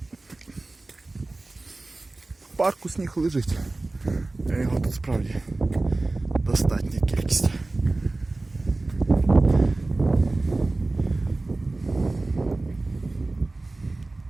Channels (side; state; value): left; quieter; 3.1 dB